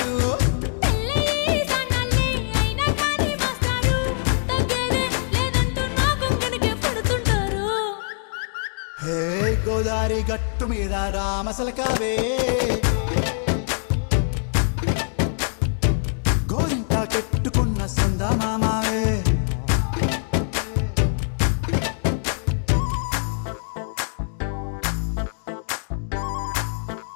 పెళ్ళయి సానాళ్ళే అయినా కానీ మాస్టారు తగ్గేదే లేదంటూ నా గుంగనికే పడుతుంటారు హే గోదారి గట్టు మీద రామసలకావే గోరింట కెట్టుకున్న సందా మామావే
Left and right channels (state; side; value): silent; right; digital silence